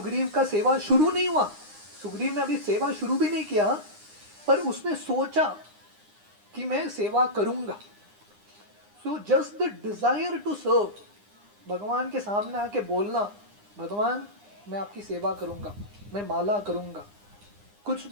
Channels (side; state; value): left; late; 9.8 ms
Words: का सेवा शुरू नहीं हुआ, सुग्रीव ने अभी सेवा शुरू भी नहीं किया, पर उसने सोचा कि मैं सेवा करूंगा। So just the desire to serve, भगवान के सामने आके बोलना, भगवान मैं आपकी सेवा करूंगा, मैं माला करूंगा, कुछ